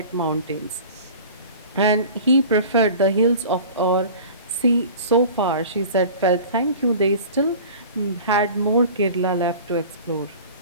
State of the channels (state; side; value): inverted; both; correlation -0.41